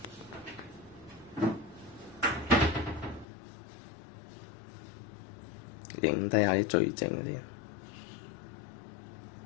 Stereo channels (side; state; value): right; drops out; at 3.2 s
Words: 影低下啲最正嗰啲。